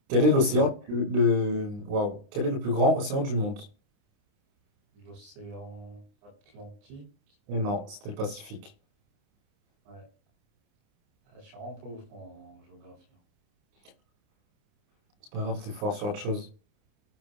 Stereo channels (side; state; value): left; late; 29 ms